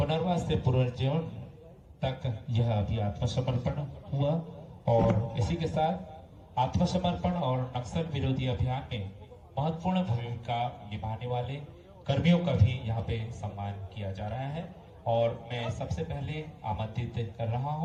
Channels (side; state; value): both; identical; correlation 1.00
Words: से पुनर्जीवन तक यह अभी आत्मसमर्पण हुआ, और इसी के साथ आत्मसमर्पण और नक्सल विरोधी अभियान में महत्वपूर्ण भूमिका निभाने वाले कर्मियों का भी यहाँ पे सम्मान किया जा रहा है। और मैं सबसे पहले आमंत्रित कर रहा